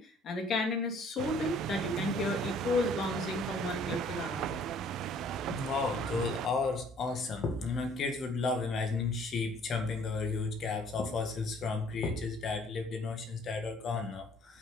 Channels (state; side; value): normal; both; correlation 0.58